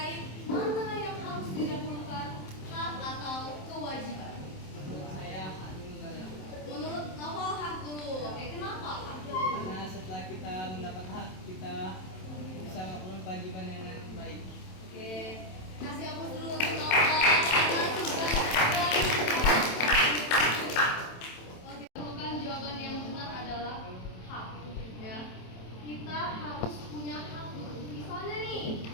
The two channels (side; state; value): right; late; 27 ms